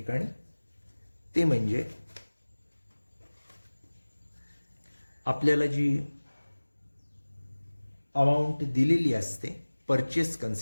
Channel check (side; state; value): both; inverted; correlation -1.00